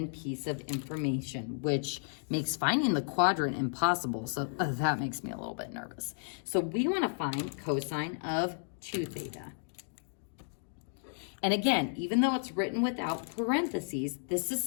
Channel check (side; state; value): right; silent; digital silence